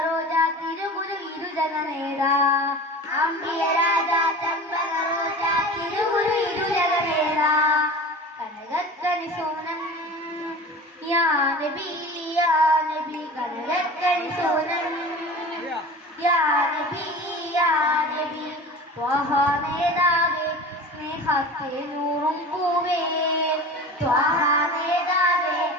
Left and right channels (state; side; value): normal; both; correlation 0.35